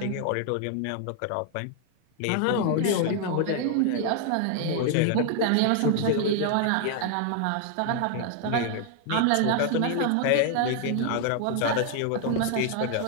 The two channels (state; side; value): different; both; correlation 0.00